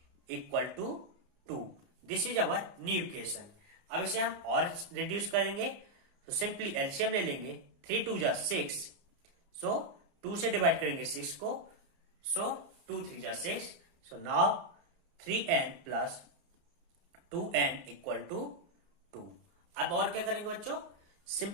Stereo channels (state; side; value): late; left; 29 ms